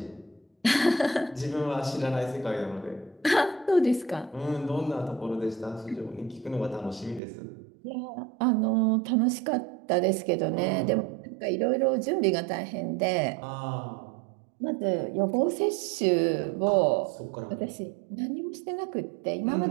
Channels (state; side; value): drops out; left; at 7.2 s